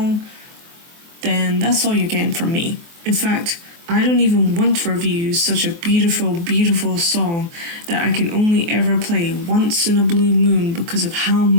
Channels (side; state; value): left; late; 24 ms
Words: then that's all you're getting from me. In fact, I don't even want to review such a beautiful, beautiful song that I can only ever play once in a blue moon because of how